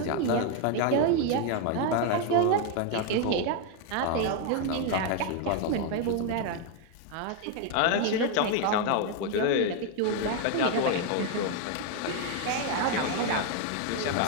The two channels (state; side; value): different; both; correlation 0.01